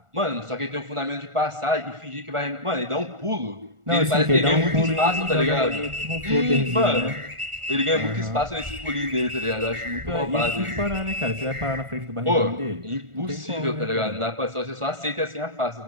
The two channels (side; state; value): left; late; 1.4 ms